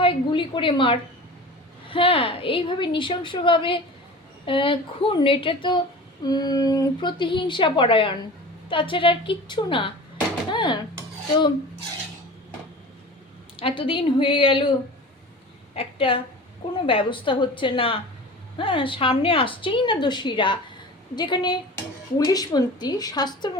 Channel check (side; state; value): both; normal; correlation 0.36